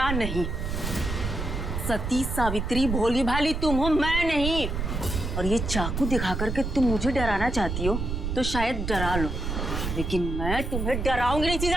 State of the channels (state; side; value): noise; right; rumble, 3 dB below the sound